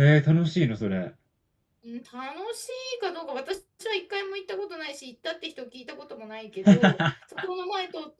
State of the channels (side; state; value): both; identical; correlation 1.00